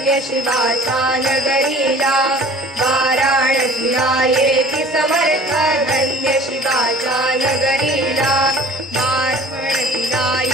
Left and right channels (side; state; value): both; normal; correlation 0.47